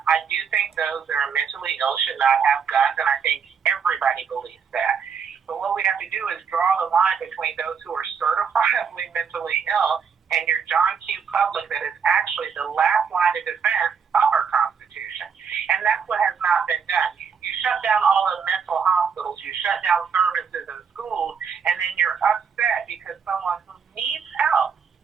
I do think those that are mentally ill should not have guns, and I think everybody believes that. But what we have to do is draw the line between those who are certifiably mentally ill and your John Q. public that is actually the last line of defense of our Constitution. And that's what has not been done. You shut down all the mental hospitals, you shut down services in schools, and then you're upset because someone who needs help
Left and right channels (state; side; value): quieter; left; 6.4 dB